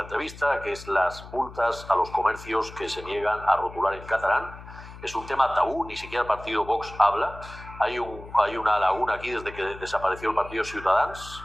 entrevista, que es las multas a los comercios que se niegan a rotular en catalán. Es un tema tabú, ni siquiera el partido Vox habla. Hay una laguna aquí desde que desapareció el partido Ciutadans,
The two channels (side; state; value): left; noise; hum, 16 dB below the sound